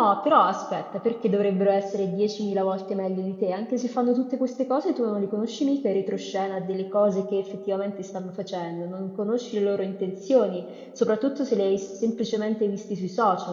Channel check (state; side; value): identical; both; correlation 1.00